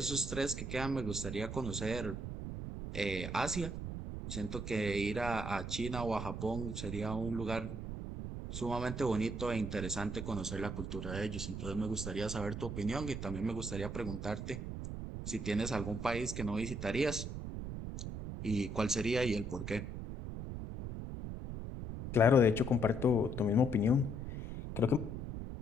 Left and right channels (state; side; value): noise; right; rumble, 6 dB below the sound